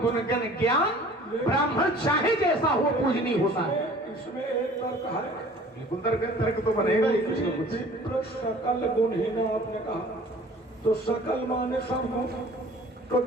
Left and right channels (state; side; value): normal; both; correlation 0.48